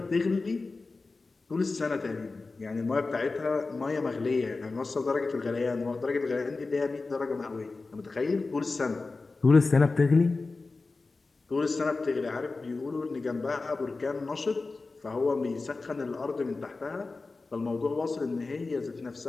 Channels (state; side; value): quieter; right; 3.7 dB